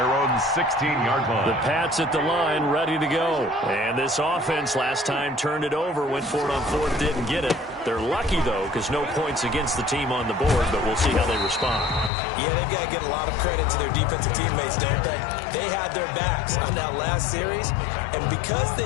own 16-yard line. The Pats at the line, ready to go. And this offense last time turned it over, went for it on 4th, didn't get it. They're lucky, though, because no points against the team on the board, but we'll see how they respond. Yeah, they've got to get a lot of credit to their defensive teammates, don't they? They had their backs on that last series, and because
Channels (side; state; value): right; drops out; at 12.1 s